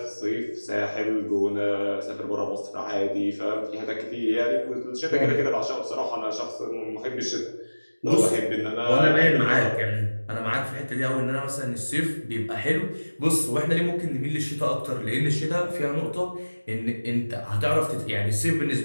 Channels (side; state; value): both; inverted; correlation -1.00